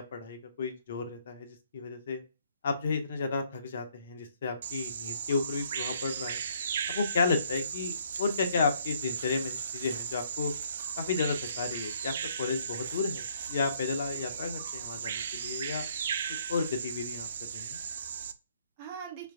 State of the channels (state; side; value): inverted; both; correlation -0.66